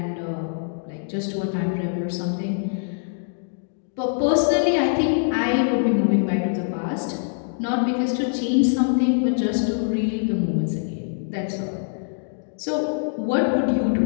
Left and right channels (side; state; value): right; silent; digital silence